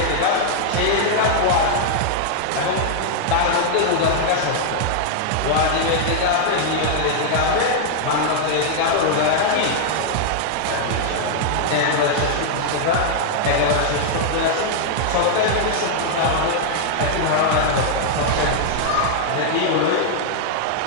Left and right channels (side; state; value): both; different; correlation -0.01